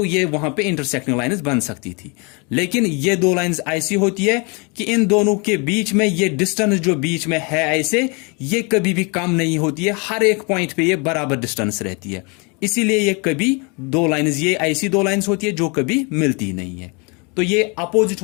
ये वहां पे इंटरसेक्टिंग लाइंस बन सकती थी। लेकिन ये दो लाइंस ऐसी होती है कि इन दोनों के बीच में ये डिस्टेंस जो बीच में है ऐसे, ये कभी भी कम नहीं होती है, हर एक पॉइंट पे ये बराबर डिस्टेंस रहती है। इसीलिए ये कभी दो लाइंस, ये ऐसी दो लाइंस होती है जो कभी मिलती नहीं है। तो ये अपोजिट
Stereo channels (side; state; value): right; quieter; 31.6 dB